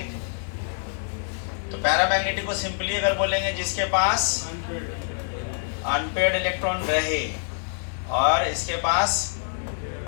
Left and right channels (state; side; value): silent; right; 61 dB below the other